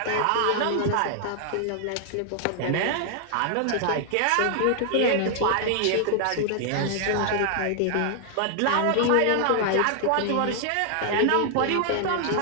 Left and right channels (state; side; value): different; both; correlation 0.00